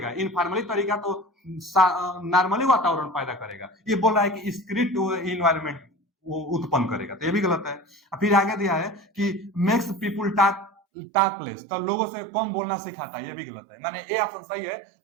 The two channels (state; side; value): drops out; left; at 10.7 s